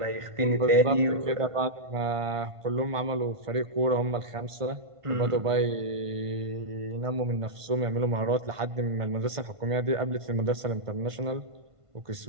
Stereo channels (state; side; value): late; left; 1.5 ms